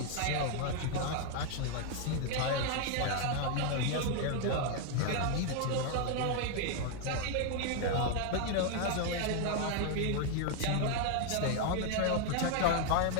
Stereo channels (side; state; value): both; different; correlation 0.01